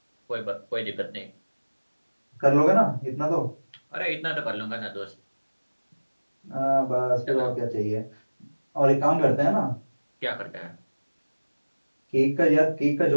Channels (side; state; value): both; inverted; correlation -1.00